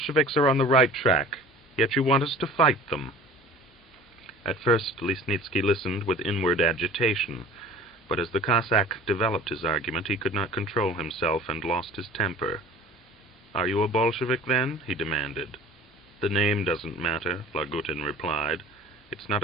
are on the right track, yet you want us to fight them." At first, Lesnitsky listened with inward agitation, but as the Cossack developed his argument, he could not control himself and lost his temper. "Are you a Bolshevik, then?" he demanded. "The name doesn't matter," Lagutin replied. "It's not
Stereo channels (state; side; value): normal; both; correlation 0.44